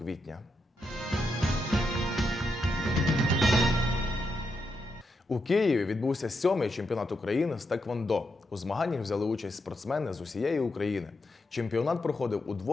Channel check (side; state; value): both; normal; correlation 0.83